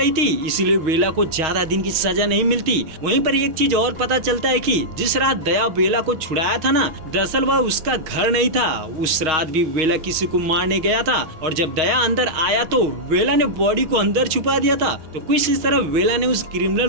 थी, इसीलिए वेला को ज्यादा दिन की सजा नहीं मिलती। वहीं पर एक चीज और पता चलता है कि जिस रात दया वेला को छुड़ाया था ना, दरअसल वह उसका घर नहीं था। उस रात भी वेला किसी को मारने गया था और जब दया अंदर आया तो वेला ने बॉडी को अंदर छुपा दिया था। तो कुछ इस तरह वेला ने उस क्रिमिनल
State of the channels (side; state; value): left; late; 6.3 ms